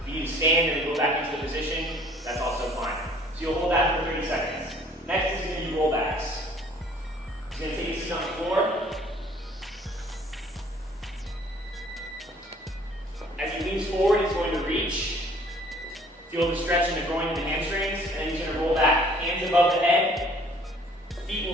If you need to stand and then go back into the position, that's also fine. So you'll hold that for 30 seconds. Next is going to be rollbacks. You're going to take a seat on the floor. As he leans forward, he's going to reach. Feel the stretch in the groin and the hamstrings, and then he's going to roll back. Hands above the head. Feet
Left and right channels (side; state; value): both; normal; correlation 0.56